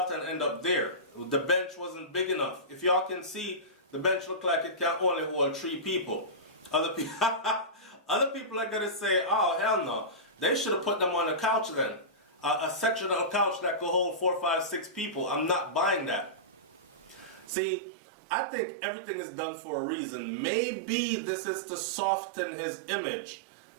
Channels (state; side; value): drops out; left; at 17.4 s